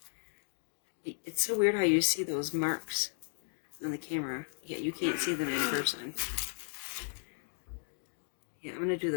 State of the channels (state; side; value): silent; right; digital silence